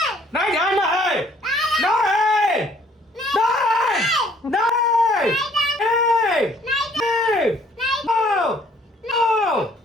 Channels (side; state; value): both; normal; correlation 0.60